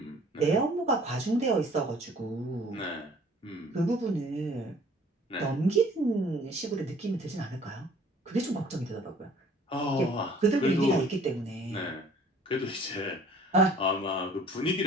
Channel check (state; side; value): normal; both; correlation 0.54